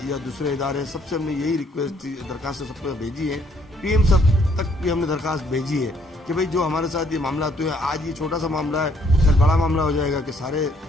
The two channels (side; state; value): both; normal; correlation 0.67